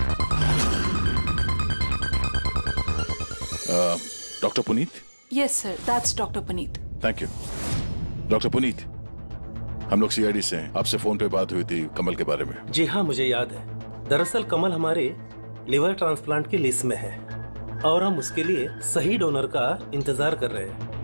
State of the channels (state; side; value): inverted; both; correlation -1.00